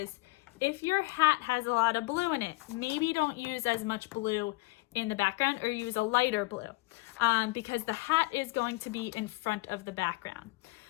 if your hat has a lot of blue in it, maybe don't use as much blue in the background, or use a lighter blue, because the hat is going to be in front of the background.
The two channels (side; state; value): right; quieter; 23.1 dB